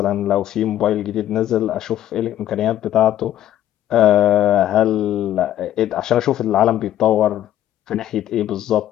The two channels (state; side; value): quieter; right; 12.3 dB